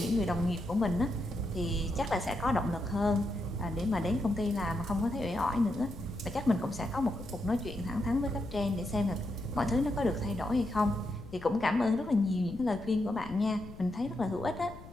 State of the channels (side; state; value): left; noise; rumble, 16 dB below the sound